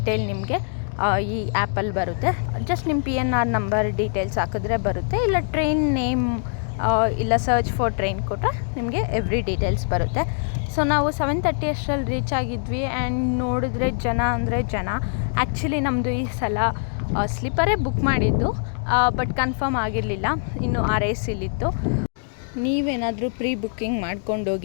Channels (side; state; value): right; silent; digital silence